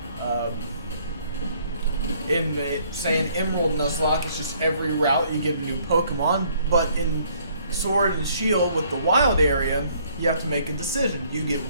Say an Emerald Nuzlocke, it's just every route you get a new Pokemon, but in Sword and Shield with the wild area, you have to make a decision. You get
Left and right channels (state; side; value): inverted; both; correlation -0.63